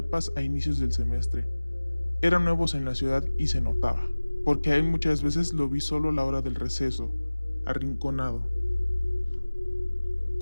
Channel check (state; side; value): inverted; both; correlation -1.00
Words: a inicios del semestre. Eran nuevos en la ciudad y se notaba, porque a él muchas veces lo vi solo a la hora del receso, arrinconado.